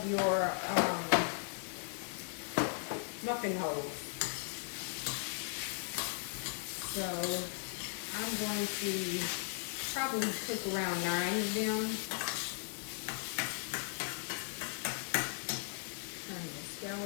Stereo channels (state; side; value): silent; right; 53 dB below the other